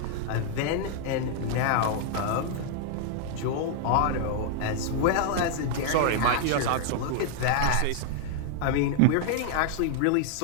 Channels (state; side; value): different; both; correlation 0.00